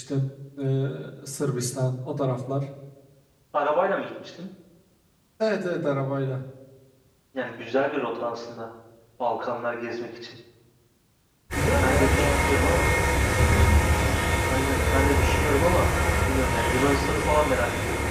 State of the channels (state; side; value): identical; both; correlation 1.00